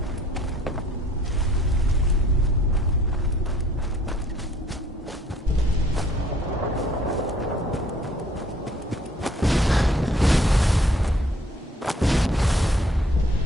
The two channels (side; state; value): both; normal; correlation 0.60